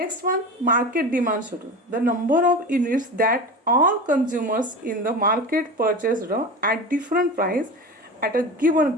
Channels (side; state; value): both; normal; correlation 0.29